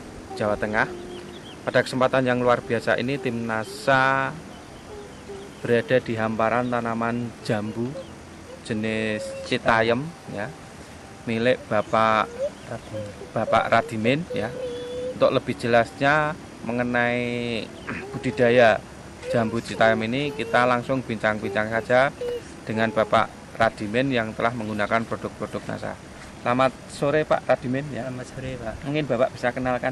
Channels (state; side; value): identical; both; correlation 1.00